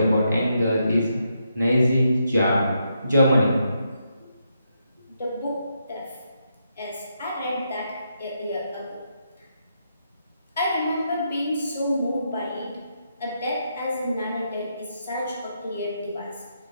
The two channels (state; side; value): inverted; both; correlation -0.80